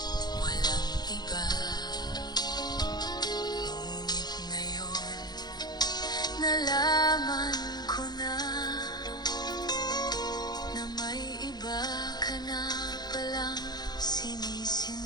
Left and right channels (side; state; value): right; late; 0.20 ms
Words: walang iba. Ngunit ngayon, nalaman ko na may iba ka na palang